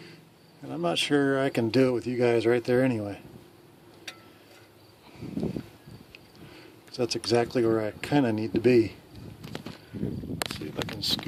And I'm not sure I can do it with you guys right there anyway. So that's exactly where I kind of need to be. Let's see if I can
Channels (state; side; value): identical; both; correlation 1.00